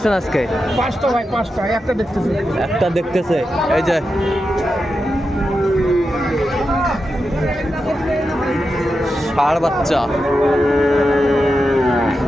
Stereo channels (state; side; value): normal; both; correlation 0.89